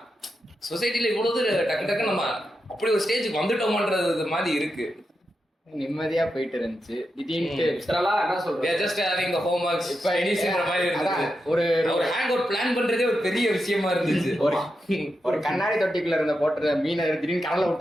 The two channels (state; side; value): normal; both; correlation 0.87